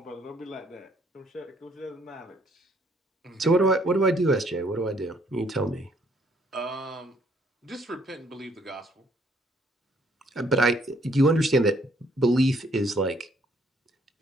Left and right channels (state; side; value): normal; both; correlation 0.66